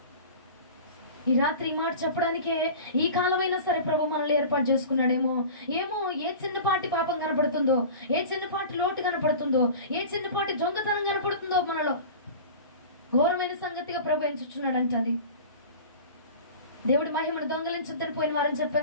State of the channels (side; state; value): both; inverted; correlation -0.37